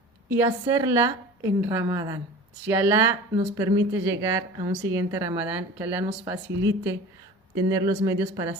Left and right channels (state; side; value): normal; both; correlation 0.38